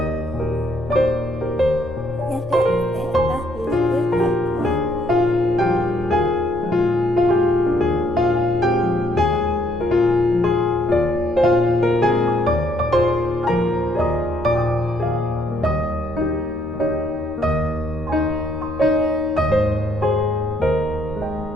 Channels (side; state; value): both; normal; correlation 0.69